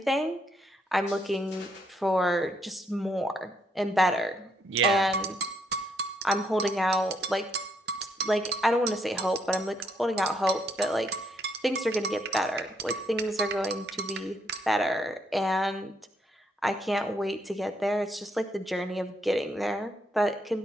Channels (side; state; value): both; normal; correlation 0.74